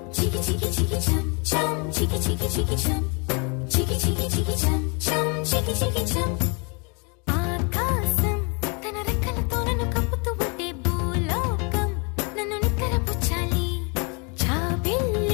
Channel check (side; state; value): right; quieter; 33.3 dB